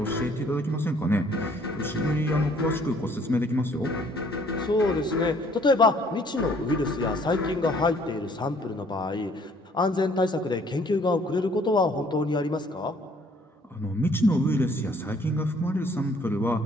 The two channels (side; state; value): both; normal; correlation 0.60